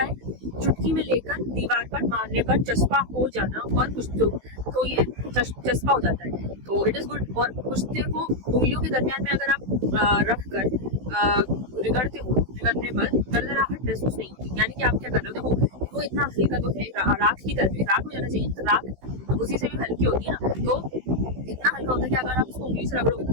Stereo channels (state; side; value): late; left; 16 ms